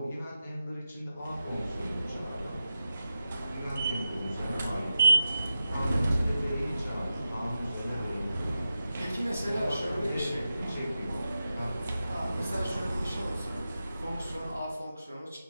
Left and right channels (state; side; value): inverted; both; correlation -0.91